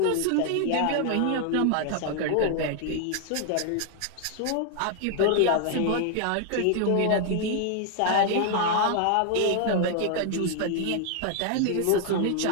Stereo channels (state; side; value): different; both; correlation 0.00